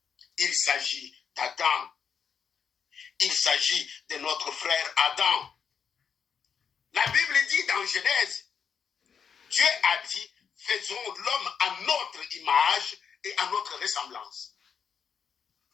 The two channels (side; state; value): right; quieter; 6.9 dB